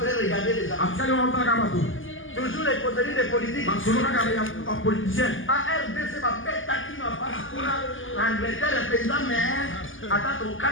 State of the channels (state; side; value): late; right; 0.58 ms